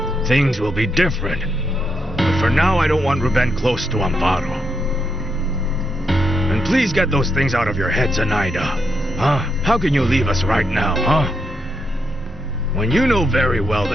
things will be different. But for now, I don't want Ruben close to Amparo. And please get those things out of your head, Zenaida. Huh? How can you leave us right now, huh? When you know very well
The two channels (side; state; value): both; normal; correlation 0.80